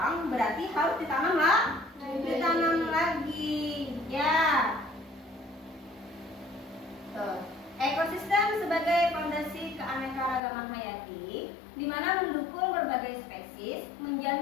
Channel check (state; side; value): drops out; right; at 10.4 s